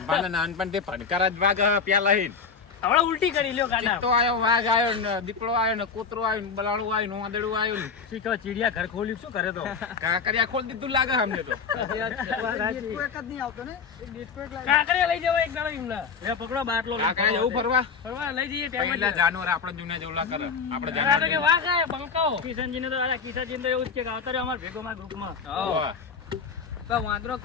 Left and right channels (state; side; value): quieter; right; 5.7 dB